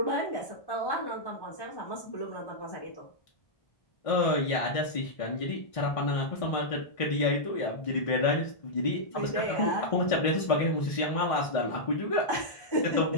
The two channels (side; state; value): right; late; 1.5 ms